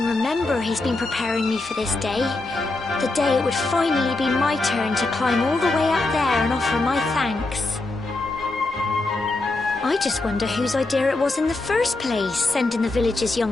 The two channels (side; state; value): right; quieter; 3.2 dB